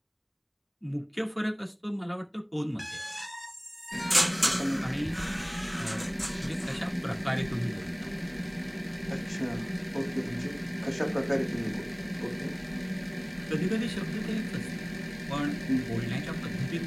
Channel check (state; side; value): identical; both; correlation 1.00